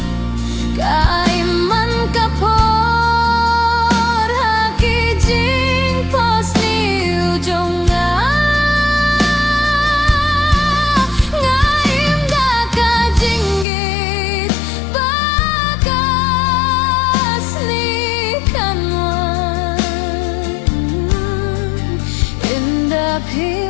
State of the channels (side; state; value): right; drops out; at 13.7 s